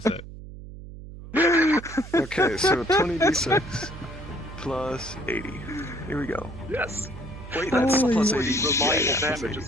it. Okay, so 20d6 plus 80. Here we go. Yes. Wait, that's Holy plus 80 shit. reliable Yeah, plus damage 80.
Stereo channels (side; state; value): right; noise; hum, 14 dB below the sound